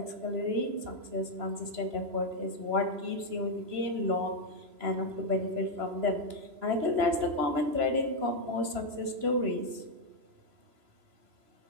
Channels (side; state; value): left; late; 3.0 ms